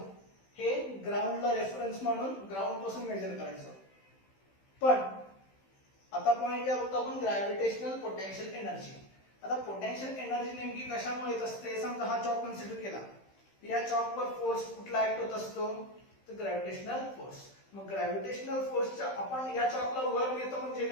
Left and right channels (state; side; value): late; right; 15 ms